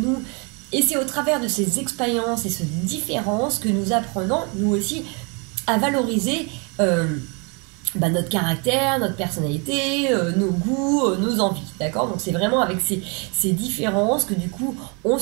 Et c'est au travers de ces expériences et ces différences que nous apprenons, nous aussi, à valoriser notre caractère, notre personnalité, nos goûts, nos envies, d'accord? Donc c'est vraiment avec ces différences que du coup on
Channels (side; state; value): left; quieter; 33.5 dB